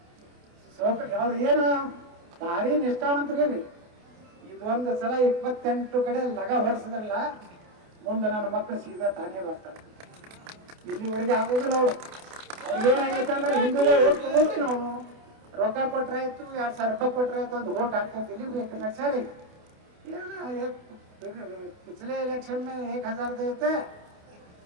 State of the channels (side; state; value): left; late; 28 ms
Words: ಅವ್ರು ಏನು ಭಾರಿ ನಿಷ್ಠಾವಂತರಿ. ಇದೊಂದು ಸಲ 28 ಕಡೆ ಲಗ ಹೊಡ್ಸಿದ್ರಲ್ಲ, ಮುಂದೆ ನನ್ನ ಮಕ್ಕಳು ಸೀದಾ ತಾನೇ ಬರ್ತಾರೆ. ಇಲ್ಲಿವರೆಗೆ ಆಗೋದಿಲ್ಲ. ಅವ್ರಿಗೇನಾಗೈತೆ ಅಂದ್ರೆ ಹಿಂದೂಗಳೇ ಓಟ್ ಹೋಗಿ ನಾವು ರೊಕ್ಕ ಕೊಟ್ರಾಯ್ತು, 2000 ರೂಪಾಯಿ ಕೊಟ್ರಾಯ್ತು, ಒಂದು ಓಟ್ ಹಾಕ್ತಂತ ಇಲ್ಲಿ ಬೇಕು ನಡ್ಸಾರಿ. पिछले इलेक्शन में 1000 देते,